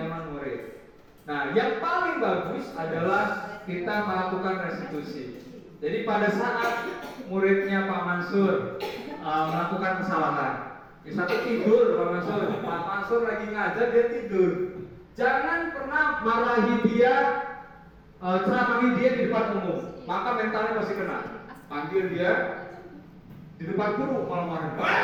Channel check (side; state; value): both; identical; correlation 1.00